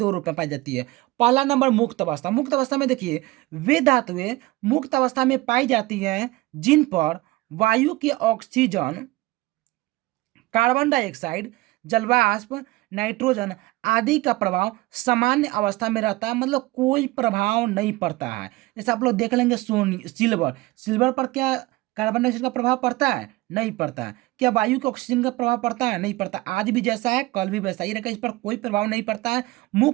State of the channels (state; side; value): quieter; left; 19.9 dB